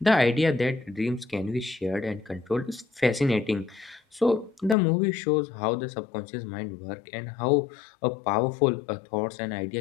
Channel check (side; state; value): right; drops out; at 4.8 s